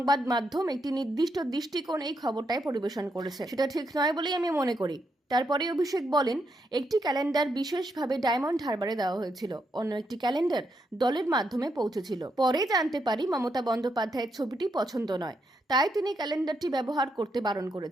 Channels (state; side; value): normal; both; correlation 0.80